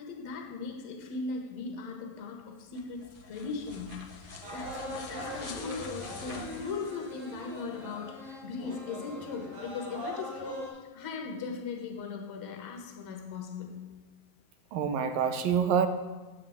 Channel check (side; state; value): left; late; 11 ms